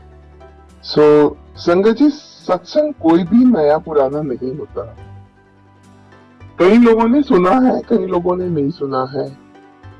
संगत जी, सत्संग कोई भी नया पुराना नहीं होता। कई लोगों ने सुना है, कई लोगों ने नहीं सुना है।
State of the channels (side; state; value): both; identical; correlation 1.00